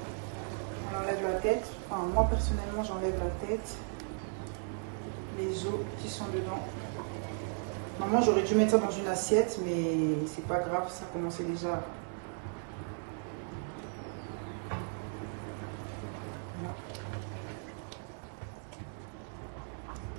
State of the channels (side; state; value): left; silent; 54 dB below the other